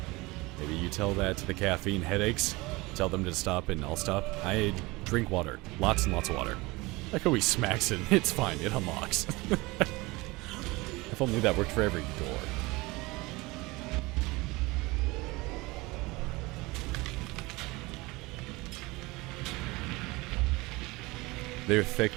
Maybe you tell that to the caffeine headaches. Tell them to stop and I'll stop. I drink water. Lots and lots of water. Like how he smacks it. It's fine. It unlocks. If only that worked for every door. They're thick,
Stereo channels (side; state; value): left; quieter; 22.8 dB